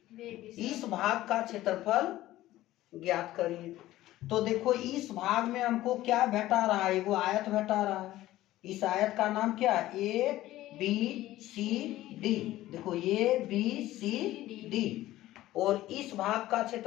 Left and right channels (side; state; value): right; quieter; 15.5 dB